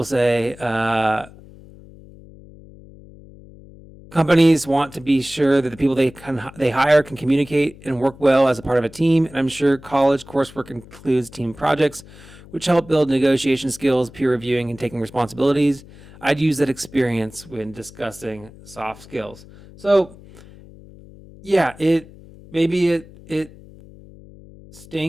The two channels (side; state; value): left; noise; hum, 21 dB below the sound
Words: say, companies want to be sure that the people they hire can communicate and work well as a part of a team, and I'm sure college coursework includes team projects, which help build negotiation skills, peer reviewing, and taking responsibilities. I'd use that experience when discussing soft skills. So, yeah, it